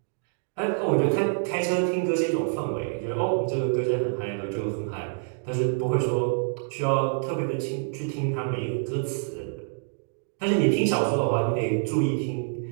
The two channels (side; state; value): left; silent; 60 dB below the other